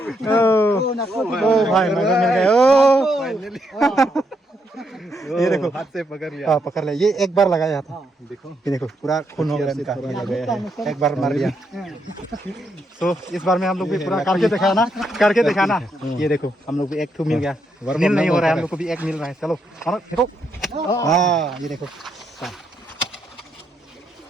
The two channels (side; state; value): both; normal; correlation 0.78